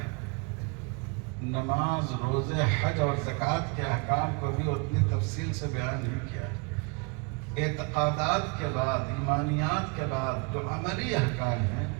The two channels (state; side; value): quieter; left; 32.7 dB